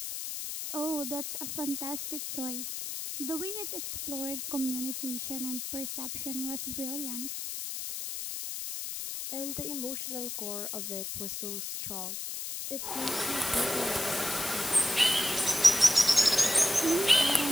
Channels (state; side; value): noise; left; hiss, 5 dB below the sound